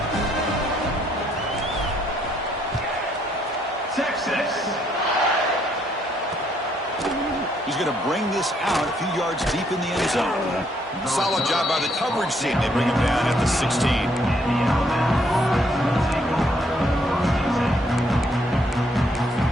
Texas. He's going to bring this this out a few yards deep in the end zone. Solid job by the coverage team. They bring him down at the 16.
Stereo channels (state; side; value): normal; both; correlation 0.70